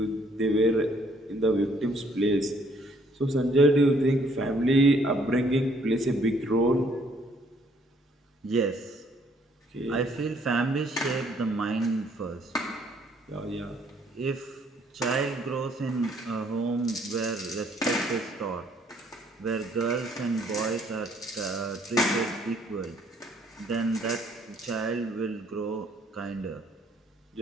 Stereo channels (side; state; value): both; normal; correlation 0.64